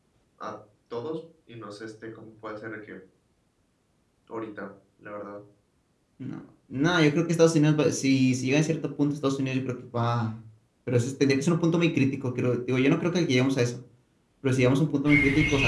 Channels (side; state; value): both; identical; correlation 1.00